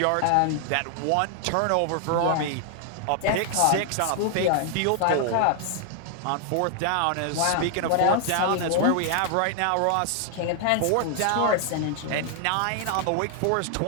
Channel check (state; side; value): different; both; correlation 0.00